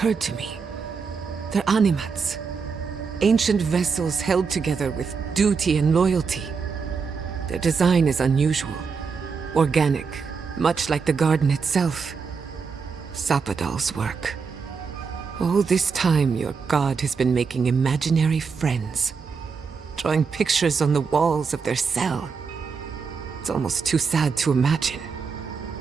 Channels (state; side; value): quieter; left; 5.4 dB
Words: to me. They're animats. Ancient vessels held together with duty and loyalty. Their design is unusual. Organic, much like the garden itself. Sapadal's work. All this time, your god has been making imaginary friends. Drawing pictures on the walls of their cell. It's almost too sad to imagine.